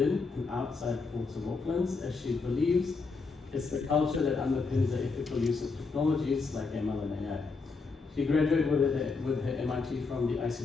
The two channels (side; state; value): right; quieter; 4.4 dB